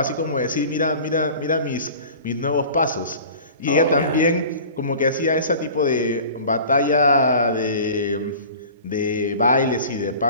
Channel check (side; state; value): both; inverted; correlation -0.41